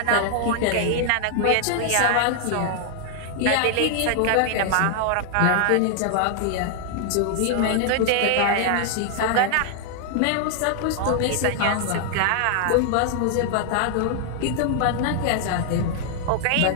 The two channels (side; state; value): both; different; correlation 0.00